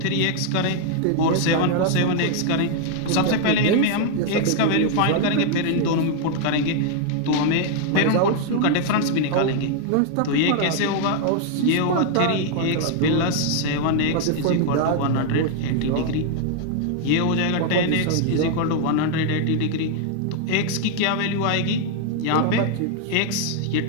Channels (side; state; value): both; different; correlation 0.00